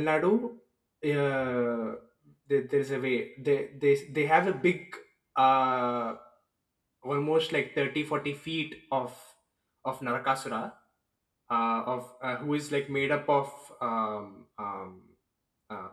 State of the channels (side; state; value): both; identical; correlation 1.00